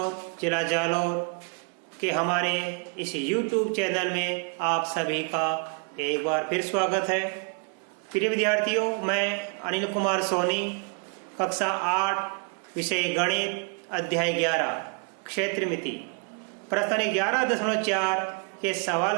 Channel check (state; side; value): quieter; left; 37.2 dB